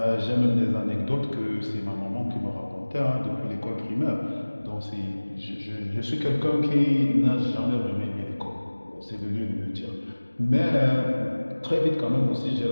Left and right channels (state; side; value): inverted; both; correlation -1.00